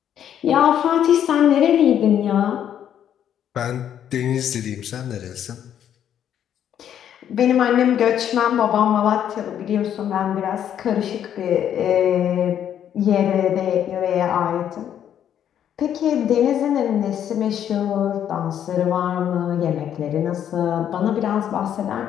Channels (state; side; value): quieter; right; 9.8 dB